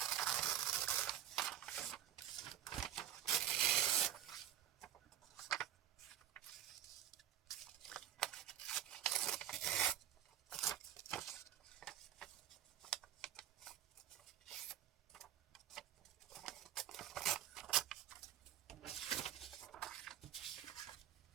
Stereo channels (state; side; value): quieter; left; 11.4 dB